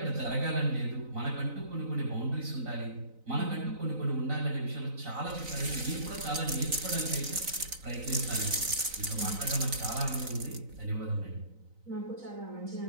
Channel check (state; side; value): late; left; 3.9 ms